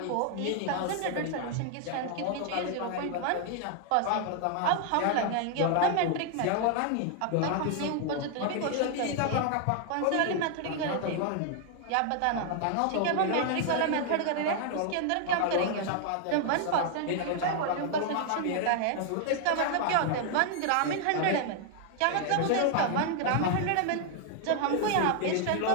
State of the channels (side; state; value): both; different; correlation 0.00